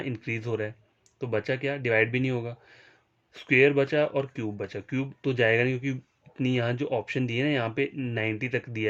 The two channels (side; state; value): both; identical; correlation 1.00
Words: इंक्रीज हो रहा है। तो बचा क्या, डिवाइड भी नहीं होगा, स्क्वेयर बचा और क्यूब बचा। क्यूब तो जाएगा नहीं क्योंकि इतनी यहाँ जो ऑप्शन दिए ना, यहाँ पे 90 तक